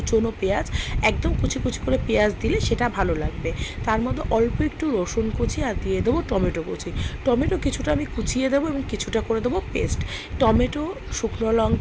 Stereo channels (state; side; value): identical; both; correlation 1.00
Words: পেঁয়াজ, একদম কুচি কুচি করে পেঁয়াজ দিলে সেটা ভালো লাগবে। তার মধ্যে অল্প একটু রসুন কুচি আর দিয়ে দেবো টমেটো কুচি। টমেটো কিছুটা আমি কুচিয়ে দেবো এবং কিছুটা করে দেবো পেস্ট। টমেটো, শুকনো